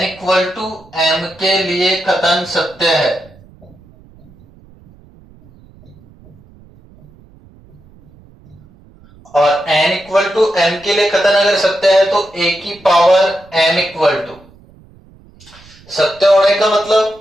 इक्वल टू m के लिए कथन सत्य है। और n इक्वल टू m के लिए कथन अगर सत्य है तो a की पावर m इक्वल टू, सत्य होने का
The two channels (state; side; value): noise; right; rumble, 26 dB below the sound